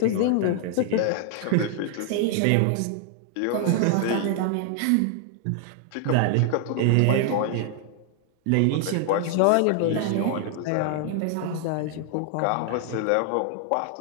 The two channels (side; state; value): both; different; correlation 0.00